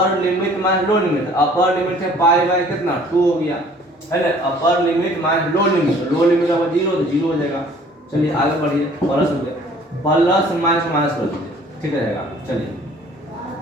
limit minus lower limit. Upper limit है π/, कितना 2 हो गया है ना, upper limit minus lower limit. Lower limit का 0 तो 0 हो जाएगा। चलिए आगे बढ़िए, प्लस हो गया, प्लस माइनस कर दीजिए, ठीक रहेगा। चलिए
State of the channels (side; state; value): both; normal; correlation 0.54